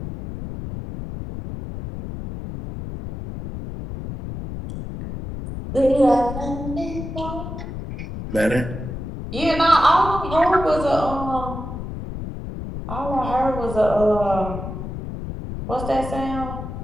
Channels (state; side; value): noise; left; rumble, 8 dB below the sound